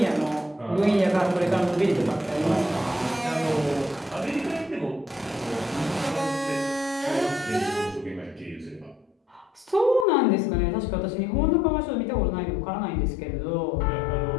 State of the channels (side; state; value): right; drops out; at 10.1 s